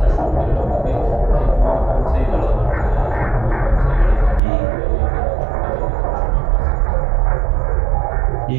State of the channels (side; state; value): left; drops out; at 4.4 s